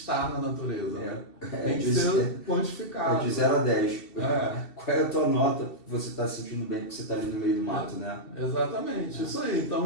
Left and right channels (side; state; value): right; late; 2.7 ms